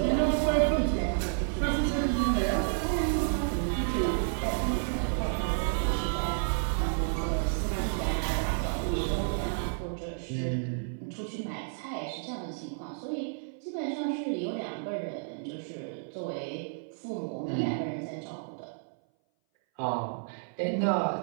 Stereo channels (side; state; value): left; silent; 57 dB below the other